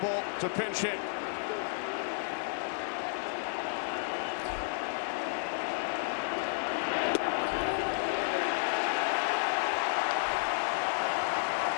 to pinch hit.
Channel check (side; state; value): right; silent; 55 dB below the other